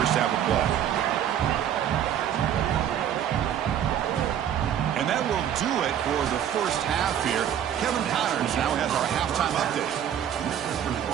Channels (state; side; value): quieter; left; 9.9 dB